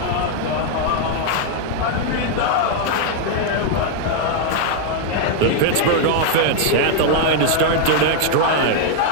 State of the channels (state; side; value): different; both; correlation 0.00